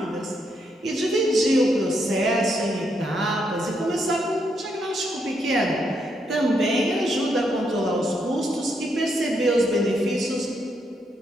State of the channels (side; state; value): both; normal; correlation 0.78